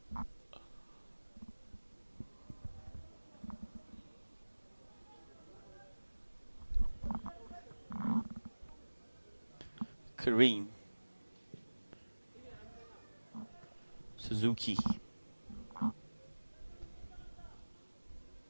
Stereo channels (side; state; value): both; inverted; correlation -1.00